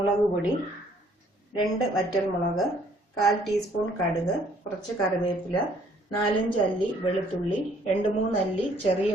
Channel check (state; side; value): normal; both; correlation 0.62